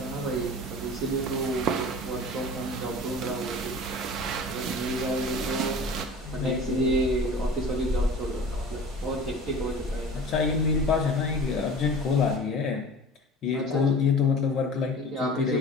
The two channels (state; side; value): normal; both; correlation 0.40